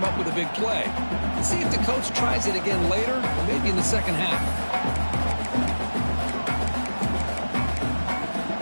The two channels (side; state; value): both; inverted; correlation -1.00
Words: up with a big play. Let's see if the coach tries it again later, or maybe in the second half.